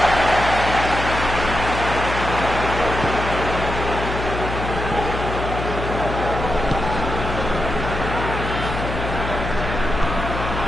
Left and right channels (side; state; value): left; noise; hum, 5 dB below the sound